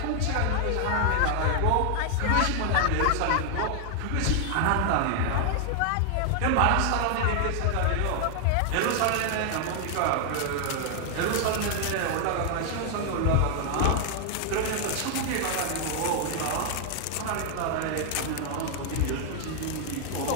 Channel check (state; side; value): different; both; correlation 0.00